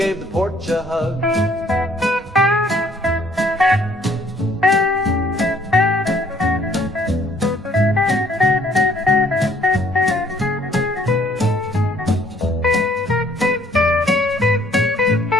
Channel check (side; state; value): both; normal; correlation 0.61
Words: the porch a hug.